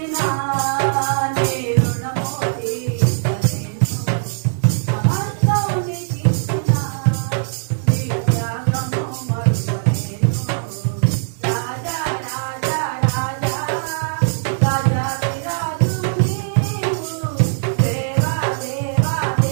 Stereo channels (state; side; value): silent; left; digital silence